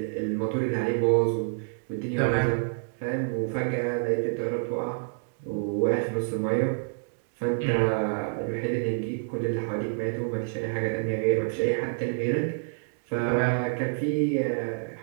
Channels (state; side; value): silent; left; digital silence